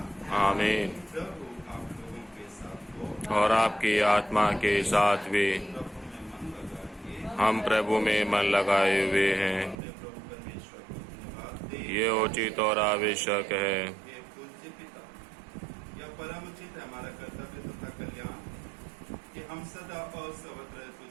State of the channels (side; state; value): left; drops out; at 9.8 s